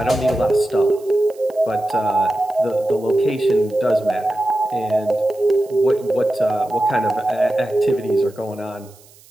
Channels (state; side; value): noise; right; hiss, 26 dB below the sound